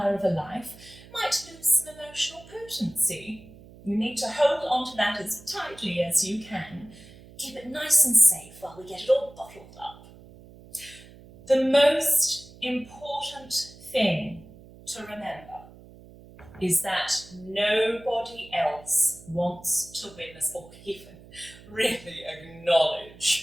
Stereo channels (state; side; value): noise; right; hum, 21 dB below the sound